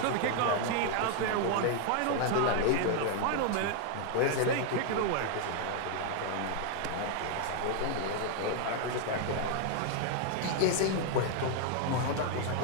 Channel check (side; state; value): both; different; correlation 0.00